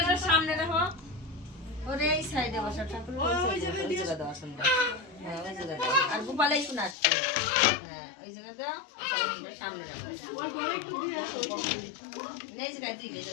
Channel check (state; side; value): drops out; right; at 7.0 s